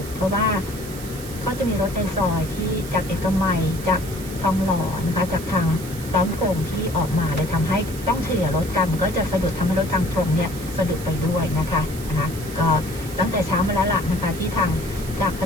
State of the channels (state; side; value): noise; right; hiss, 14 dB below the sound